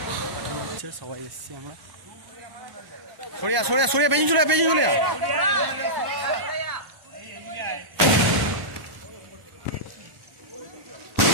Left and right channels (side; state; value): left; late; 1.0 ms